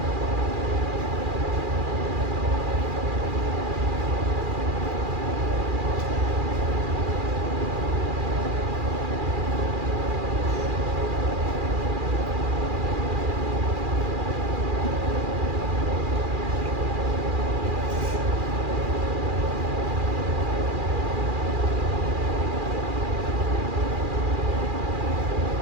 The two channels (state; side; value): late; left; 2.4 ms